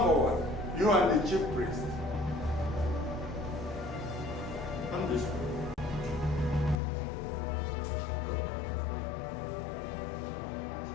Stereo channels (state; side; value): drops out; right; at 6.8 s